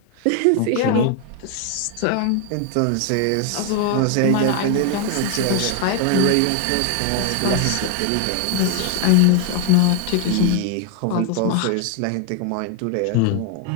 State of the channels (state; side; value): different; both; correlation 0.00